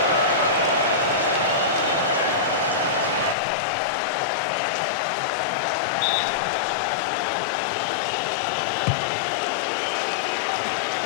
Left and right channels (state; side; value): drops out; right; at 3.4 s